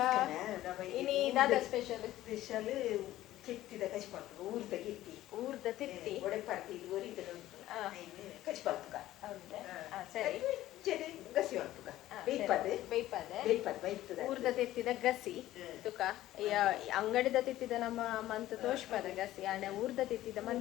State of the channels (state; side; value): quieter; right; 14.8 dB